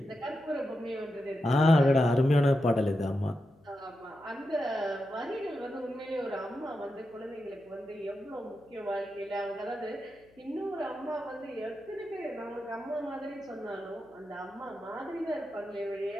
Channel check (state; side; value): noise; left; hum, 30 dB below the sound